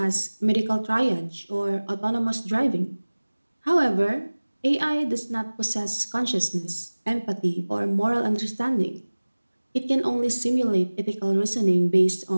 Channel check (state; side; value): inverted; both; correlation -1.00